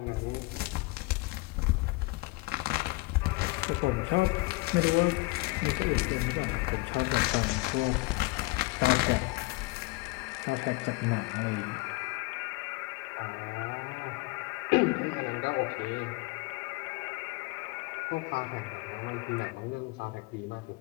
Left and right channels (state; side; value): quieter; right; 23.2 dB